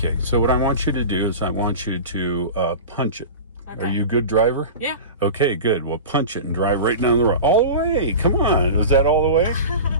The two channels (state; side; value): inverted; both; correlation -0.31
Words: so what I want you to do is I want you to punch it. Okay. Are you a good driver? Yeah. Okay, good. Well, punch it and drive right down the road. All the way. Come on. Was that all the way?